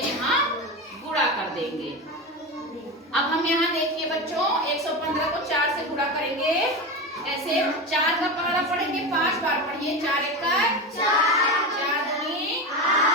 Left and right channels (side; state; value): both; normal; correlation 0.21